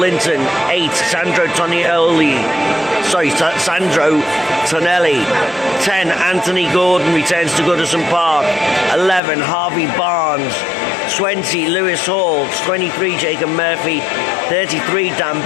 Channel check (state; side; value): drops out; right; at 9.2 s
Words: 8, Sandro Tonelli. 10, Anthony Gordon returns to Goodison Park. 11, Harvey Barnes. 20, Lewis Hall. 23, Jacob Murphy. 33, Dan